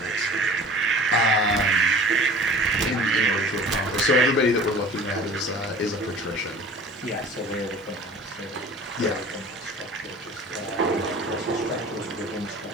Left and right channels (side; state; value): both; normal; correlation 0.44